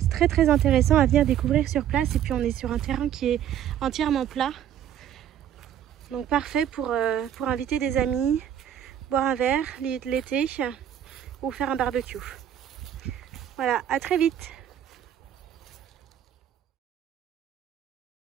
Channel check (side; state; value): left; quieter; 10.2 dB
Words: très très intéressant à venir découvrir sur place. Et puis on est sur un terrain qui est entièrement plat. Donc parfait pour inviter des amis, boire un verre l'été ou faire un barbecue. Voilà, à très vite.